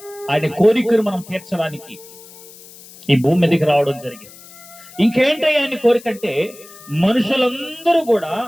ఆయన కోరికను మనం తీర్చడానికి ఈ భూమి మీదకి రావడం జరిగింది. ఇంకేంటి ఆయన కోరిక అంటే మనుషులందరూ కూడా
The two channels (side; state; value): left; noise; hiss, 20 dB below the sound